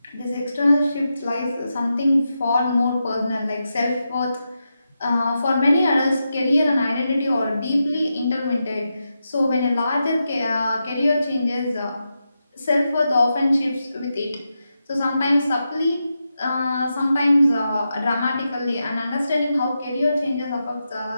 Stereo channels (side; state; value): both; inverted; correlation -0.88